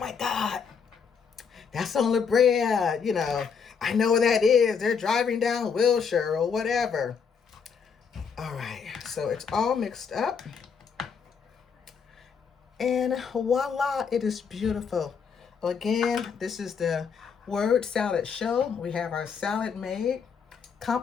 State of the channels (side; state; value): right; quieter; 6.2 dB